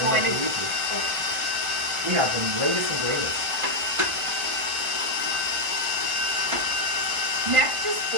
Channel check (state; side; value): late; left; 1.5 ms